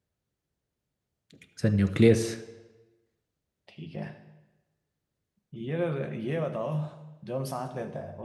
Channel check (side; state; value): both; identical; correlation 1.00